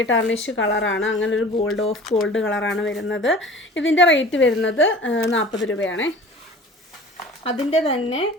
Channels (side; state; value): both; normal; correlation 0.43